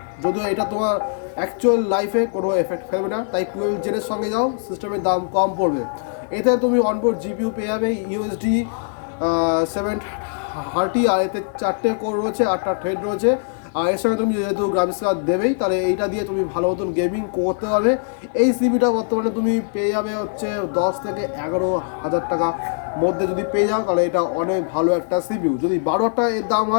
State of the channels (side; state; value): right; silent; digital silence